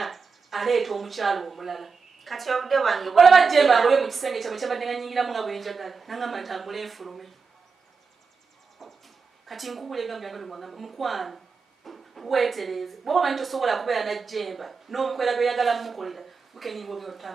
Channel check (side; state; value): left; quieter; 5.1 dB